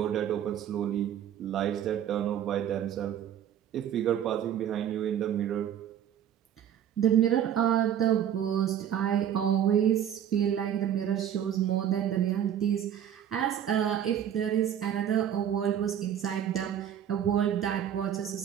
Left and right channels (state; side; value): quieter; left; 9.8 dB